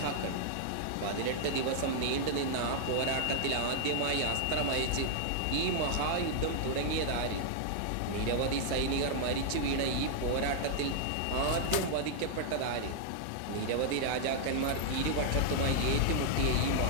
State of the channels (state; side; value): different; both; correlation -0.01